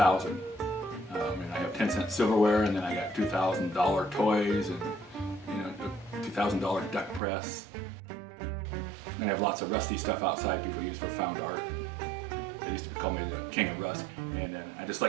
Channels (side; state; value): left; drops out; at 7.2 s